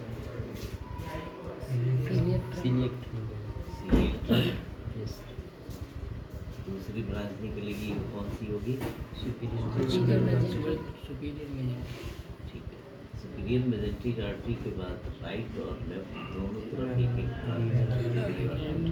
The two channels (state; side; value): identical; both; correlation 1.00